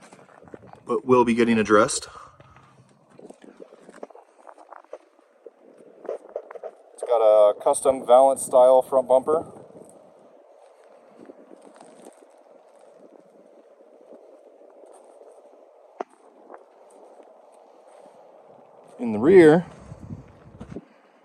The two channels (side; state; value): both; identical; correlation 1.00